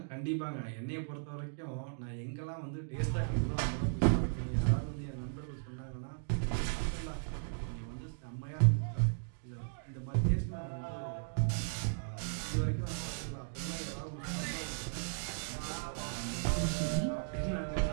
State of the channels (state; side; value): silent; left; digital silence